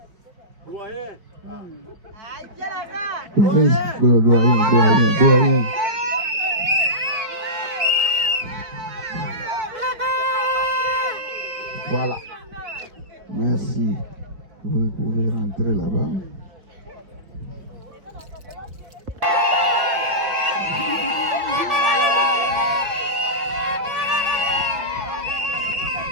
Doyen. Voilà. Merci. Vous pouvez rentrer là-bas.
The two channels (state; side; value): late; left; 5.2 ms